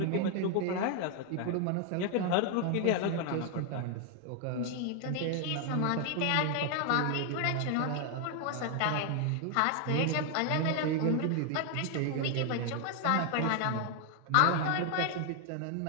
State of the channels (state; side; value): different; both; correlation 0.00